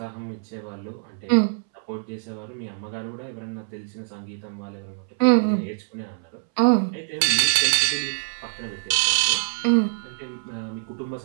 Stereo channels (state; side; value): silent; left; 62 dB below the other